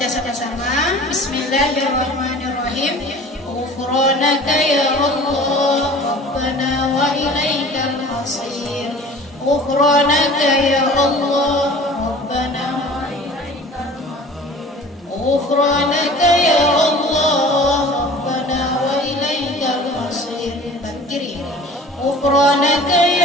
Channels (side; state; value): both; normal; correlation 0.43